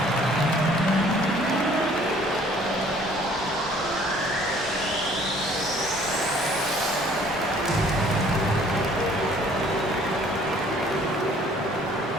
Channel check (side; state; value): both; normal; correlation 0.56